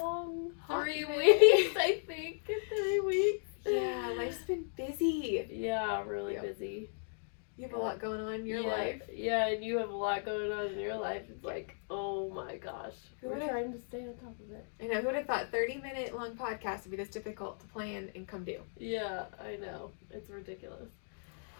3 weeks, I think. 3 weeks. Yeah, life's been busy. Yeah, really Yep. busy. You have a lot going on in your life. Yeah, and you have a lot going on in your life. It's like, oh my gosh. We're trying to stay on top of it. I know, who would have thought 30-minute long podcast would be this difficult to plan and come do? Yeah, I know. It's ridiculous.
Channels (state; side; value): silent; right; digital silence